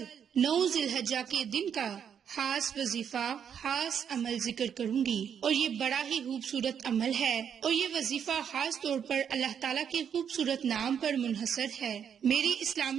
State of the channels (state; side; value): quieter; left; 8.0 dB